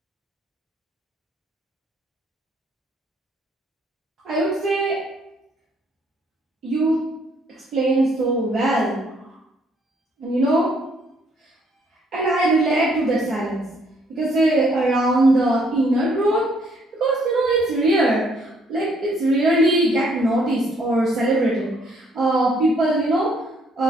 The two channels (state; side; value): normal; both; correlation 0.67